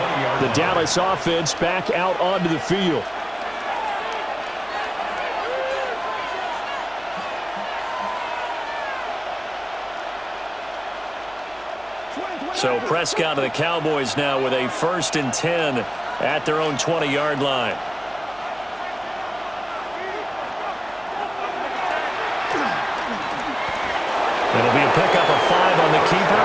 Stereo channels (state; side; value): noise; right; hum, 28 dB below the sound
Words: The Dallas offense back out onto the field. So Prescott of the Cowboys now with a 1st and 10 at their own 20-yard line. It'll be a pickup of 5 on the keeper.